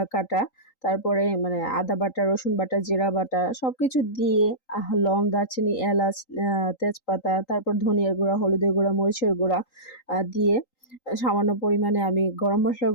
কাটা। তারপরে মানে আদা বাটা, রসুন বাটা, জিরা বাটা সবকিছু দিয়ে লং, দারচিনি, এলাচ, তেজপাতা, তারপর ধনিয়ার গুঁড়া, হলুদের গুঁড়া, মরিচের গুঁড়া দিয়ে সামান্য পরিমাণে আমি গরম মসলার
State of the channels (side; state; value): right; late; 3.8 ms